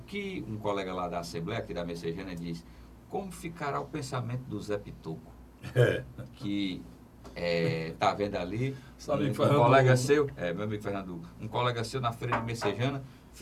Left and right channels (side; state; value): both; identical; correlation 1.00